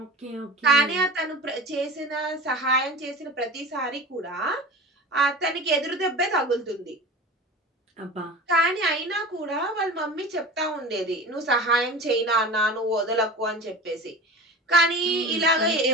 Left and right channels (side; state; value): both; normal; correlation 0.33